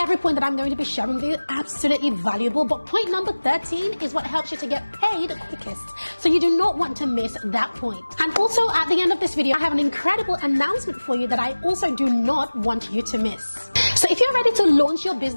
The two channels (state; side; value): inverted; both; correlation -1.00